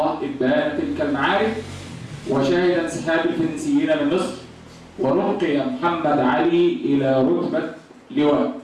إبان تلك المعارك، وشهد انسحاب الفرنسيين من مصر، ورقي محمد علي إلى رتبة لواء.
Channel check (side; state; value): both; identical; correlation 1.00